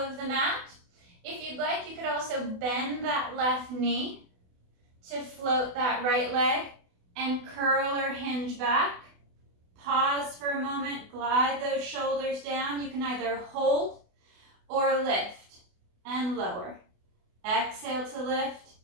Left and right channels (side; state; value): left; late; 28 ms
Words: the mat. If you'd like, you could also bend that left knee to float that right leg and curl or hinge back. Pause for a moment, glide those shoulders down. You can either hold or lift and lower. Exhale to lift,